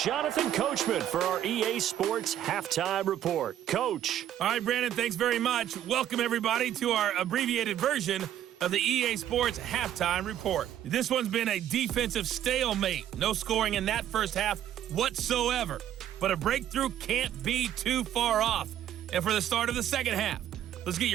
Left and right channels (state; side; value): quieter; left; 11.2 dB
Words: Coachman for our EA Sports Halftime Report. Coach. All right, Brandon, thanks very much. Welcome, everybody, to our abbreviated version of the EA Sports Halftime Report. This one's been a defensive stalemate. No scoring in that first half whatsoever. But a breakthrough can't be too far off. And for the start of the second half, let's get